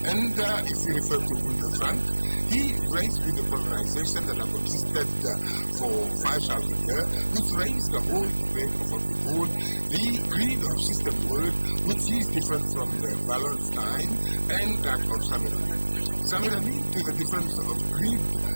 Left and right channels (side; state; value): both; inverted; correlation -1.00